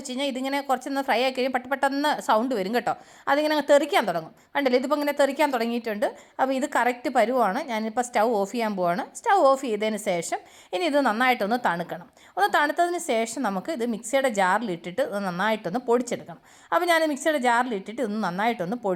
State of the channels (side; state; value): both; identical; correlation 1.00